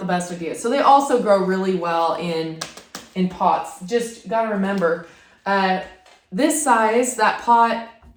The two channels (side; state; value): both; identical; correlation 1.00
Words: best idea. So they also grow really well in pots. Just gotta remember, this size, that pot